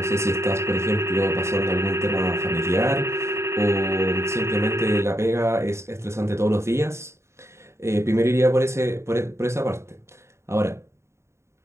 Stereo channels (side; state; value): left; late; 0.13 ms